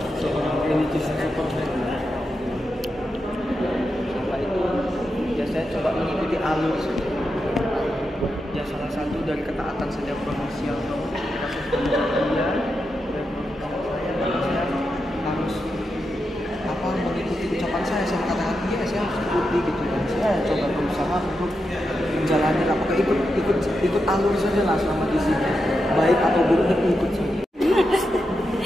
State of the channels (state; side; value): normal; both; correlation 0.87